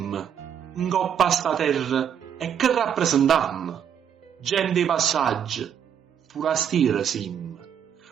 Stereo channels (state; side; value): quieter; left; 8.6 dB